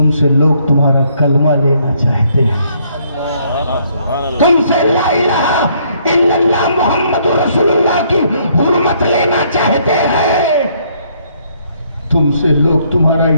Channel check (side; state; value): both; inverted; correlation -0.68